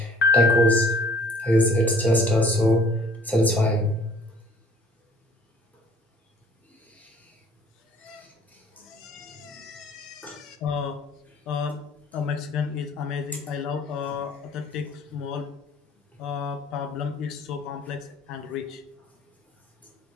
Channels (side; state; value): both; normal; correlation 0.56